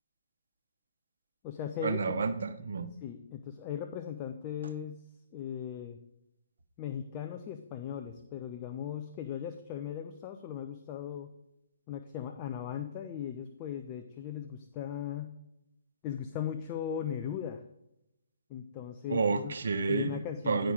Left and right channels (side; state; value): both; inverted; correlation -0.54